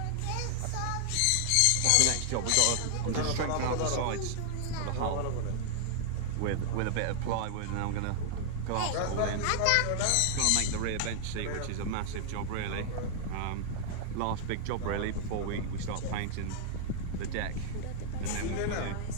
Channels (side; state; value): both; different; correlation 0.00